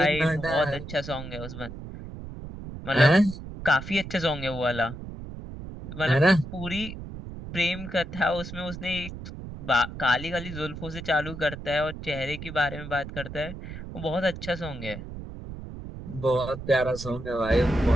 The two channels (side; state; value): right; noise; rumble, 10 dB below the sound